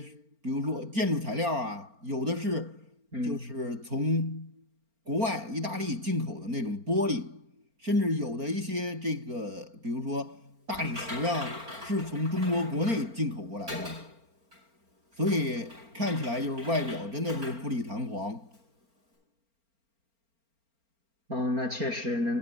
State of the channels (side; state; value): left; late; 4.4 ms